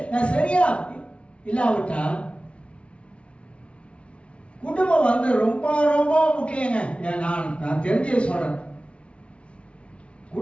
நான் சரியா இல்லாவிட்டா குடும்பம் வந்து ரொம்ப ரொம்ப முக்கியங்க. நான் தெரிஞ்சே சொல்றேன்,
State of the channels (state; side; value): late; right; 0.060 ms